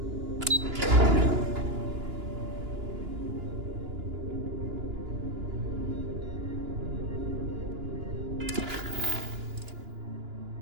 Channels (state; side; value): late; left; 2.9 ms